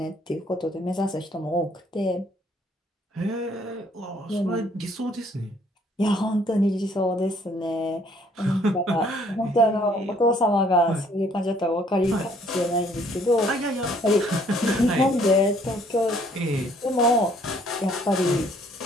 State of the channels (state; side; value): normal; both; correlation 0.62